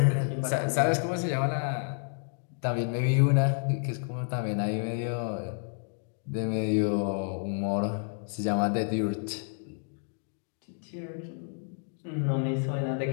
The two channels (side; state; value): right; silent; 58 dB below the other